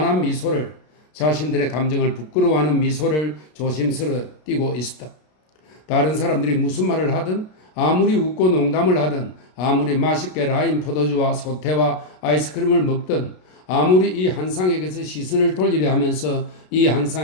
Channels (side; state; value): right; late; 33 ms